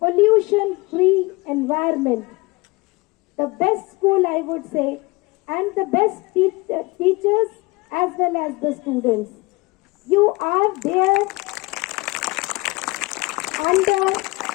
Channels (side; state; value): right; quieter; 23.7 dB